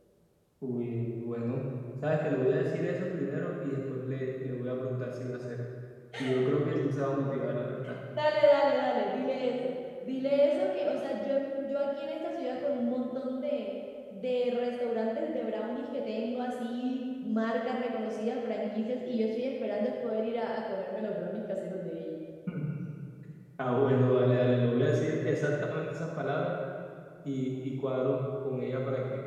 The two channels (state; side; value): identical; both; correlation 1.00